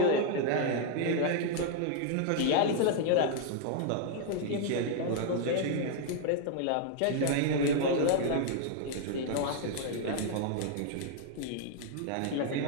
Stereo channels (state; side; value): different; both; correlation 0.00